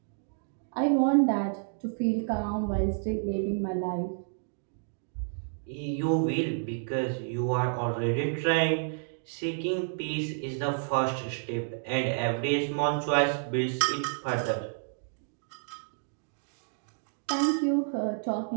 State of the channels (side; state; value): left; silent; digital silence